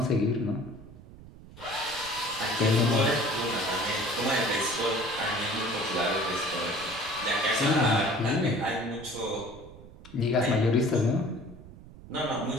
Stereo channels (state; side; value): noise; right; rumble, 18 dB below the sound